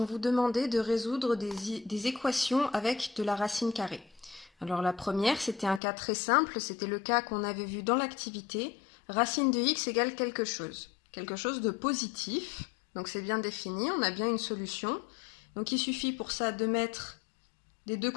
vous demandait de résoudre des équations avec de la racine carrée. Alors la première, c'était un cas très simple, c'était le cas qu'on avait vu dans l'activité. Racine de x égale quelque chose de positif. Donc c'est bien défini, on a bien une solution. Donc il suffit pour ça de mettre des deux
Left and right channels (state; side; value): drops out; right; at 5.8 s